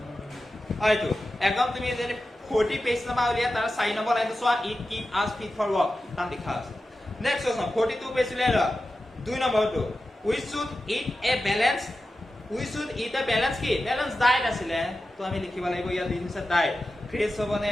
আইটো একদম তুমি যদি 40 পেজ নাম্বাৰ উলিয়া তাৰ 4 নম্বৰ লাইনটো চোৱা it keep us fit for work তাম লিখা আছে নেক্সট কোৱেশ্চন 42 পেজ উলিয়া 2 নম্বৰটো we should eat a balance কি balance diet আছিলে তো আমি লিখিব লাগিব ইয়াত দিছে diet ফ্ৰেছ হবনে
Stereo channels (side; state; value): both; normal; correlation 0.92